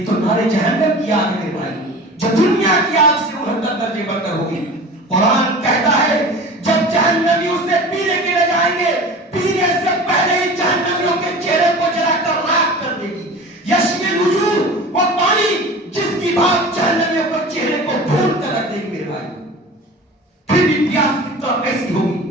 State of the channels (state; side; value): normal; both; correlation 0.37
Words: تو نارے جہنم کی آگ ہے میرے بھائی, جو دنیا کی آگ سے 69 درجے بڑھ کر ہوگی. قرآن کہتا ہے جب جہنمی اسے پینے کے لیے جائیں گے, پینے سے پہلے ہی جہنمیوں کے چہرے کو جلا کر راکھ کر دے گی. یشمی الوجوہ, وہ پانی جس کی بات جہنمیوں کو چہرے کو بھون کر رکھ دے گی میرے بھائی. پھر بھی پیاس کتنا کیسی